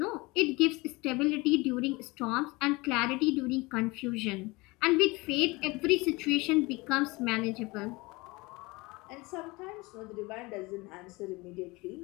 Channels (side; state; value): right; quieter; 23.8 dB